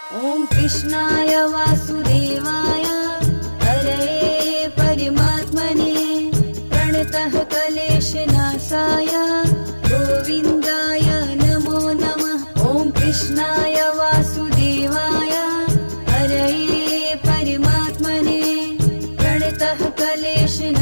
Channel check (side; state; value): both; inverted; correlation -1.00